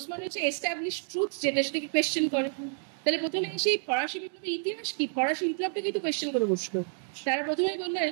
মডার্নিজম এস্টাবলিশ ট্রুথ যেটা, সেটাকে কোয়েশ্চেন করে। তাহলে প্রথমে সেই ফরাসি বিপ্লবের ইতিহাস কি, ফরাসি বিপ্লবটাকে তো কোয়েশ্চেন করে বসলো। তারা প্রথমেই বললেন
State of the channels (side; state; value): left; silent; 55 dB below the other